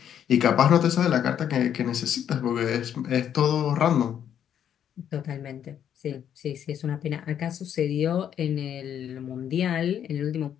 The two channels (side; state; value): right; quieter; 9.4 dB